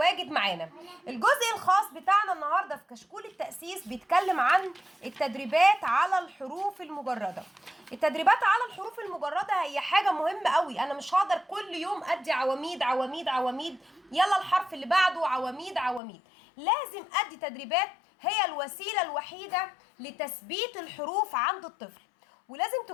معانا. الجزء الخاص بتاعنا النهاردة في كشكول التأسيس بيتكلم عن التدريبات على الحروف المجردة. التدريبات على الحروف المجردة هي حاجة مهمة قوي، انا مش هقدر كل يوم ادي عواميد عواميد عواميد، يلا الحرف اللي بعده عواميد عواميد. لازم ادي تدريبات، هي الوسيلة الوحيدة لتثبيت الحروف عند الطفل، ولازم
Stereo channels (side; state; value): right; drops out; at 16.0 s